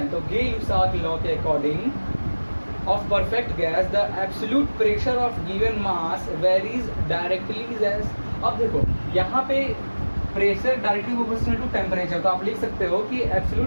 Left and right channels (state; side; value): inverted; both; correlation -1.00